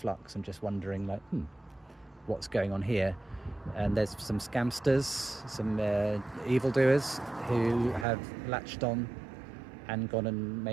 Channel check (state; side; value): drops out; left; at 8.1 s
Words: and just wondering, like, what's going on here? And there's some scamsters, some evildoers who have latched on and gone and